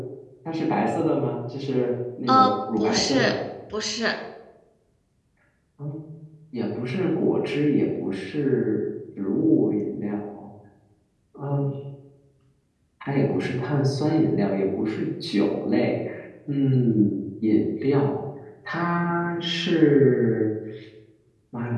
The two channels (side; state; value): both; identical; correlation 1.00